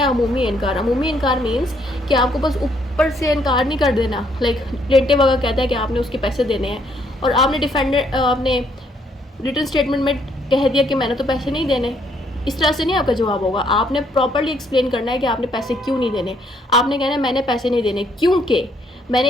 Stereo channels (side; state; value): both; normal; correlation 0.69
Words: अमूमी इनकार। अमूमी इनकार मीन्स कि आपको बस ऊपर से इनकार नहीं कर देना। लाइक प्लेंटिव अगर कहता है कि आपने उसके पैसे देने हैं और आपने डिफेंडेंट आपने रिटन स्टेटमेंट में कह दिया कि मैंने तो पैसे नहीं देने, इस तरह से नहीं आपका जवाब होगा। आपने प्रॉपर्ली एक्सप्लेन करना है कि आपने पैसे क्यों नहीं देने। आपने कहना है मैंने पैसे नहीं देने क्योंकि